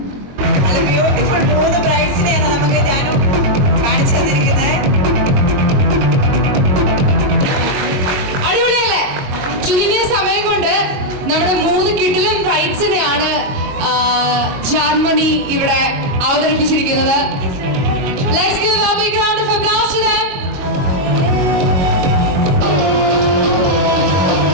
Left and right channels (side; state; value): left; late; 22 ms